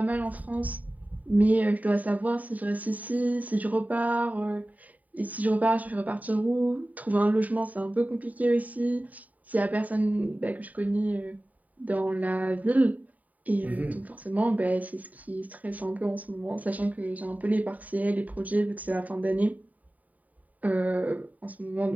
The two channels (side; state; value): left; late; 0.073 ms